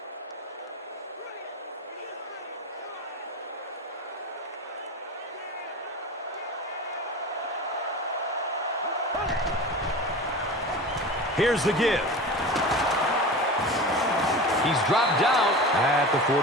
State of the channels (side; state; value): both; normal; correlation 0.32